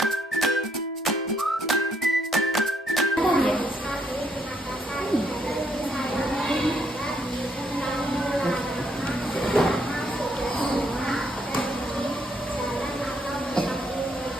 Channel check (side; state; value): both; normal; correlation 0.72